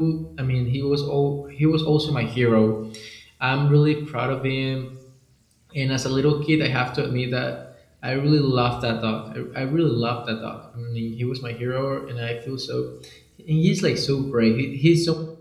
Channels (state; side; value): identical; both; correlation 1.00